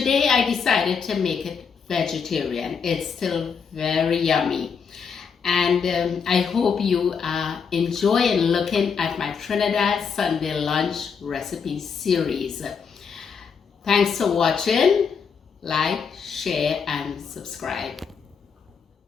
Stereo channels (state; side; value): quieter; right; 6.1 dB